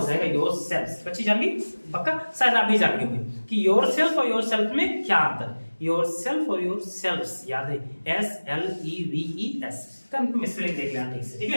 जाएगा योरसेल्फ। बच्ची जान गई पक्का, शायद आप भी जान गए होंगे कि योरसेल्फ और योरसेल्फ में क्या अंतर। योरसेल्फ और योरसेल्फ्स याद है, SLEVES का मिसस्पेलिंग देख लेना ठीक से, ठीक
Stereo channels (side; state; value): both; inverted; correlation -1.00